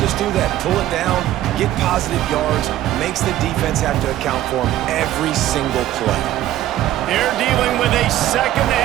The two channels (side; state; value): left; quieter; 13.5 dB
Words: do that. Pull it down, get positive yards, makes the defense have to account for him every single play. They're dealing with a 2nd